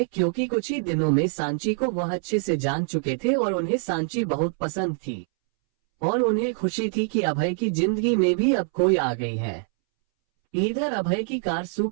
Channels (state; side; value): silent; left; 62 dB below the other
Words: क्योंकि कुछ ही दिनों में सांची को वह अच्छे से जान चुके थे और उन्हें सांची बहुत पसंद थी और उन्हें खुशी थी कि अभय की जिंदगी में भी अब कोई आ गई है। इधर अभय की कार